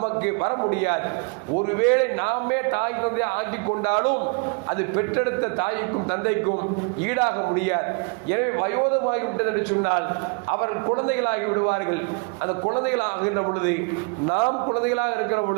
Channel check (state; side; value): quieter; left; 36.0 dB